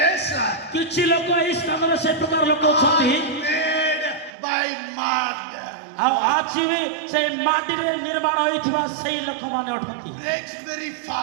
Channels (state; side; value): drops out; left; at 4.3 s